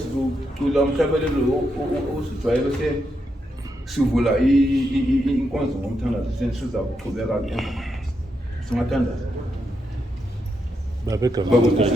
umhlabelelo osijwayele bese sivula inkonzo ngomthandazo senisiza ukuqhubeka ke emva. Singathandaza.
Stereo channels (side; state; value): both; normal; correlation 0.82